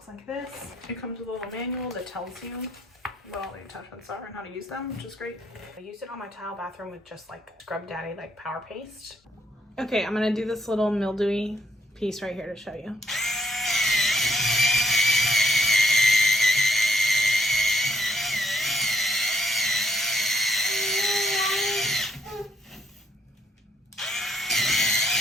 like this. It comes with a little manual that tells you what all the attachments are and how to use them, which is great. I used it on my tile bathroom with just like Scrub Daddy like power paste. Okay, I'm gonna do this little mildewy piece right here to show you.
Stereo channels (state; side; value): normal; both; correlation 0.69